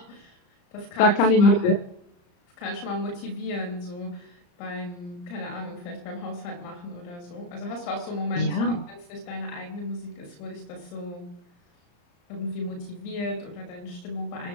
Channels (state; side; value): late; right; 34 ms